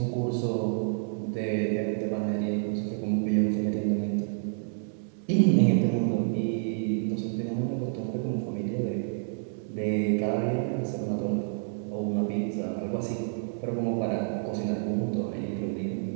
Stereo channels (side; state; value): left; silent; digital silence